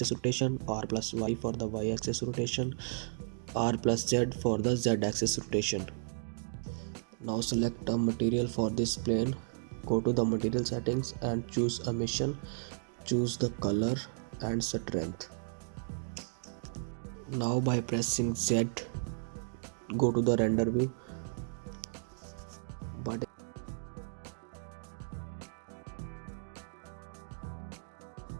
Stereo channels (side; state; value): left; silent; digital silence